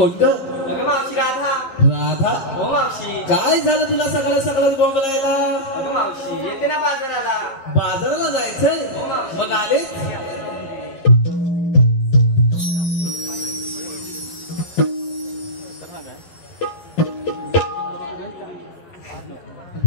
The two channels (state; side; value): late; right; 11 ms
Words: अगं मावशी राधा. राधा. हो मावशी. काय झालं तुला सकाळ सकाळ बोंबलायला? अगं मावशी येते ना बाजाराला. बाजाराला जायचंय? हो मावशी. मग आलेच?